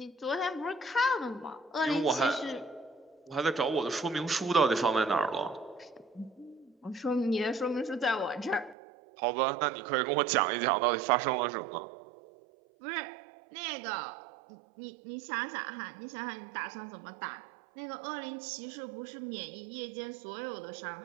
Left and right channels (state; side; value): drops out; left; at 8.8 s